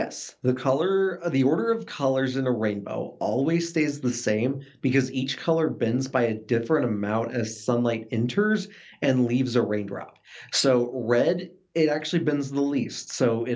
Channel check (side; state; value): both; identical; correlation 1.00